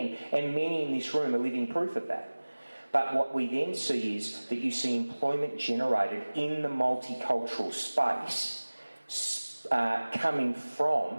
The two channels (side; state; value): both; inverted; correlation -1.00